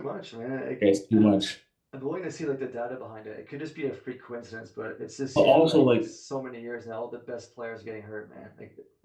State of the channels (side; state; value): both; identical; correlation 1.00